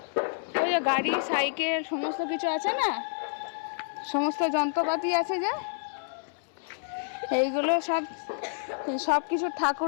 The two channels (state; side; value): silent; right; 59 dB below the other